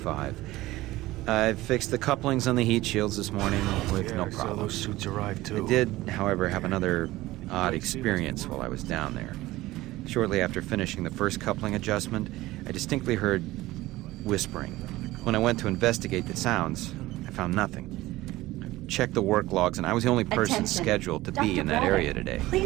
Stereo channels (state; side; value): quieter; left; 17.7 dB